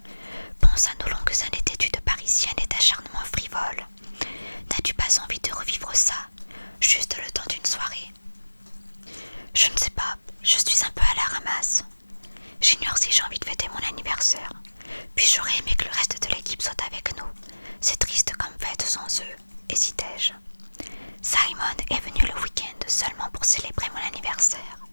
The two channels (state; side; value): inverted; both; correlation -1.00